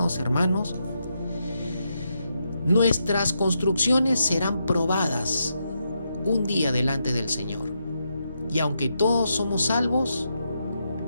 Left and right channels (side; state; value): both; inverted; correlation -0.82